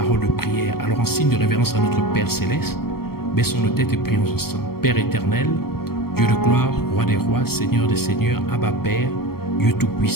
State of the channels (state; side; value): late; right; 0.94 ms